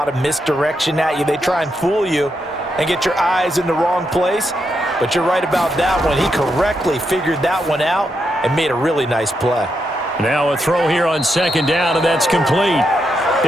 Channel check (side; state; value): both; normal; correlation 0.82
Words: of misdirection at you. They try and fool you and get your eyes in the wrong place. But you're right about that one. He correctly figured that one out and made a really nice play. Now a throw here on 2nd down, and that's complete.